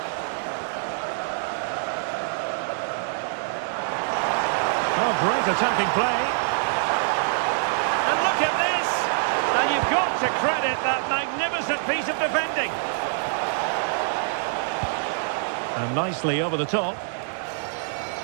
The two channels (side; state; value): left; silent; 62 dB below the other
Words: Oh, great attacking play. And look at this! And you've got to credit that magnificent piece of defending. And nicely over the top.